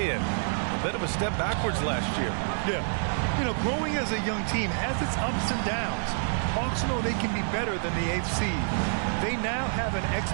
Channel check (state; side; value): silent; left; digital silence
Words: A bit of a step backwards last year. Yeah. You know, growing as a young team has its ups and downs. Hawks know they can be better than the 8th seed. They now have an